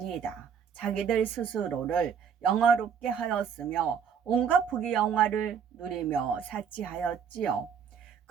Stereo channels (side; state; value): left; quieter; 7.3 dB